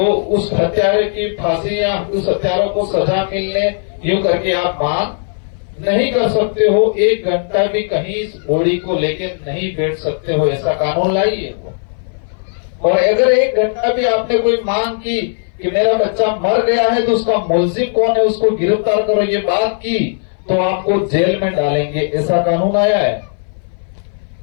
उस हत्यारे की फांसी या उस हत्यारों को सजा मिलने यूं करके आप मांग नहीं कर सकते हो। 1 घंटा भी कहीं इस बॉडी को लेके नहीं बैठ सकते हो, ऐसा कानून लाइए। और अगर 1 घंटा भी आपने कोई मांग की कि मेरा बच्चा मर गया है तो उसका मुलजिम कौन है उसको गिरफ्तार करो, ये बात की तो आपको जेल में डालेंगे, ऐसा कानून आया है।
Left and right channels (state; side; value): silent; right; 60 dB below the other